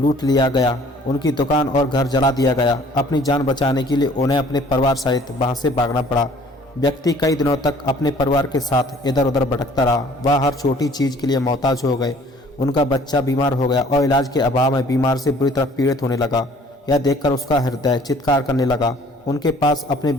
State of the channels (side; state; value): both; normal; correlation 0.55